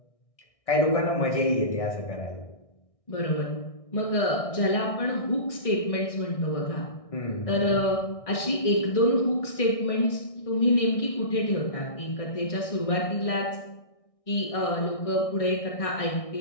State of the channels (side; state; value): right; late; 1.6 ms